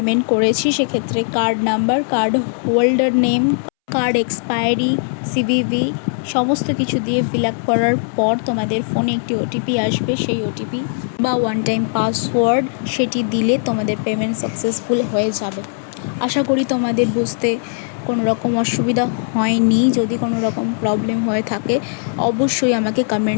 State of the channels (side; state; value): right; silent; 67 dB below the other